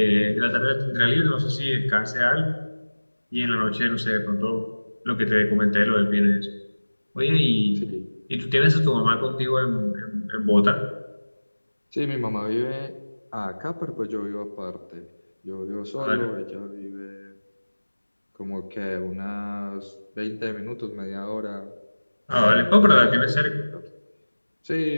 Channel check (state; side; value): inverted; both; correlation -1.00